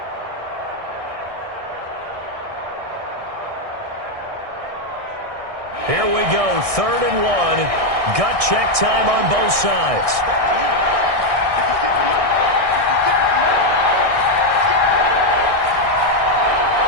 Here we go, 3rd and 1. Gut check time on both sides.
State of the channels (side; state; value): left; late; 1.6 ms